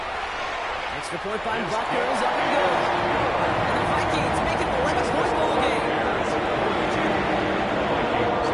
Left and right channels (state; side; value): identical; both; correlation 1.00